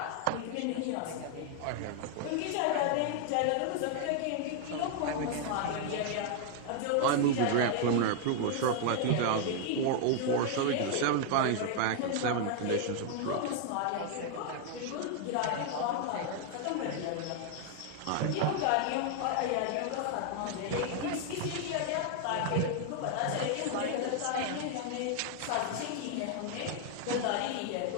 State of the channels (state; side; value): different; both; correlation 0.00